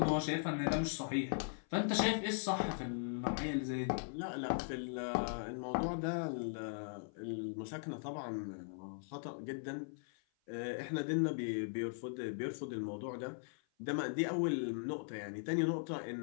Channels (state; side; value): silent; right; 52 dB below the other